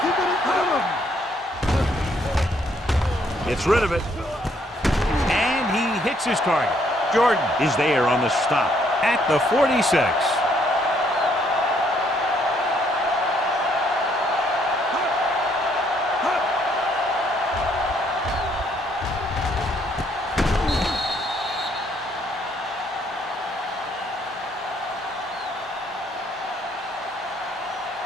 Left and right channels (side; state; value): both; normal; correlation 0.68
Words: it in front of him. Gets rid of it. And he hits his target. Jordan is there on the stop at the 46.